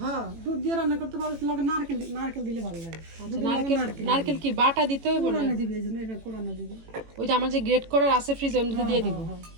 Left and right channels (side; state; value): left; late; 18 ms